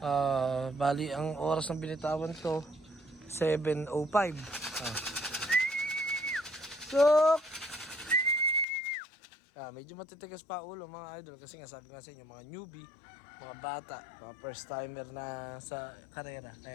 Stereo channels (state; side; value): drops out; right; at 8.7 s